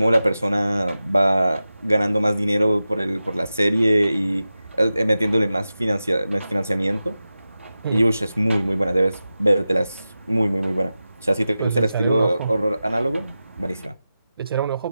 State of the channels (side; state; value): both; inverted; correlation -0.93